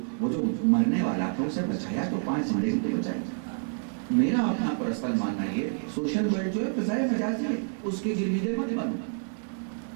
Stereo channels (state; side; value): silent; left; 59 dB below the other